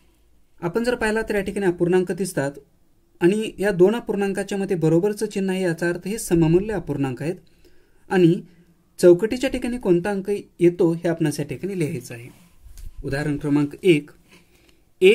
आपण जर पाहिला तर या ठिकाणी अपूर्णांक दिसतात आणि या दोन अपूर्णांकाच्या मध्ये बरोबरचं चिन्ह आहे, याचा अर्थ हे सममूल्य अपूर्णांक आहेत आणि चौकटीच्या ठिकाणी कोणता अंक येतो हे आपणास या ठिकाणी लिहायचं आहे. उदाहरण क्रमांक 1,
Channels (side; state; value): both; identical; correlation 1.00